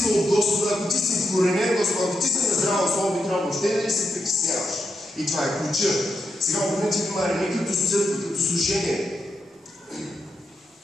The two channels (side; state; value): both; normal; correlation 0.84